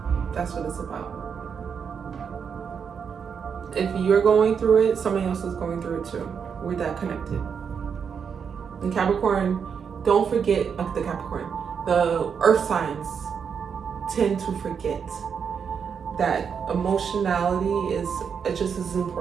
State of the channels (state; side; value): quieter; left; 6.7 dB